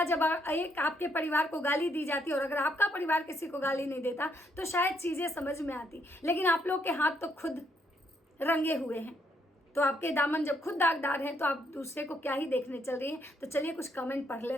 जब एक आपके परिवार को गाली दी जाती है, और अगर आपका परिवार किसी को गाली नहीं देता तो शायद चीज़ें समझ में आती। लेकिन आप लोग के हाथ तो खुद रंगे हुए हैं, तो आपके दामन जब खुद दागदार हैं तो आप दूसरे को क्या ही देखने चल रही हैं। तो चलिए कुछ कमेंट पढ़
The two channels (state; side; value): normal; both; correlation 0.73